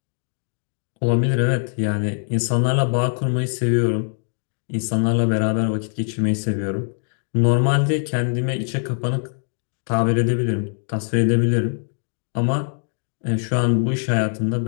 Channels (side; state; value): right; silent; digital silence